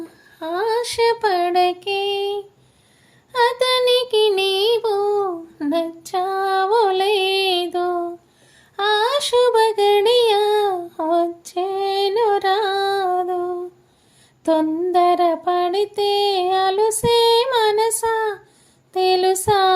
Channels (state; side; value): identical; both; correlation 1.00